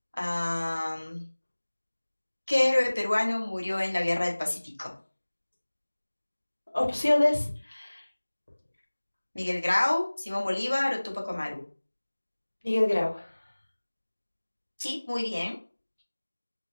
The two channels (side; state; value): both; inverted; correlation -1.00